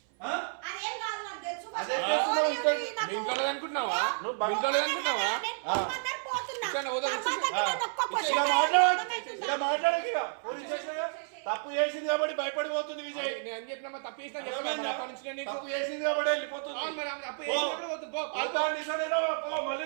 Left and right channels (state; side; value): silent; left; 57 dB below the other